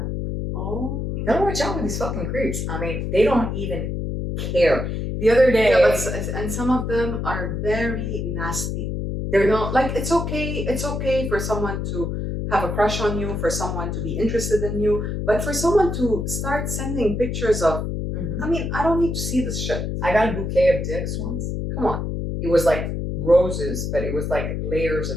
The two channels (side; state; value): left; noise; hum, 3 dB below the sound